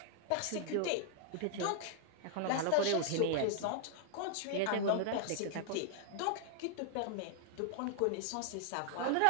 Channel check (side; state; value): both; different; correlation -0.01